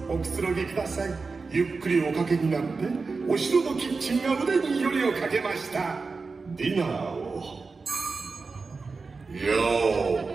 おくつろぎください。ゆっくりおかけになって、お城のキッチンが腕によりをかけました。ディナーをよ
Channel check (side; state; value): left; quieter; 4.3 dB